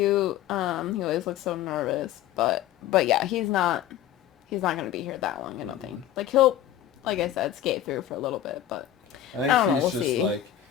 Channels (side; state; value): right; quieter; 11.5 dB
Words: He always looks so nervous. But yeah, he's not gonna be here that long, I don't think. Like, he'll, like I said, skate through for a little bit, but I think she's just see. Like,